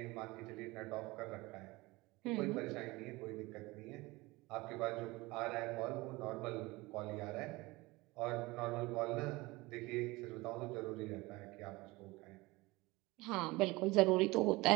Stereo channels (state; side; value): quieter; left; 21.9 dB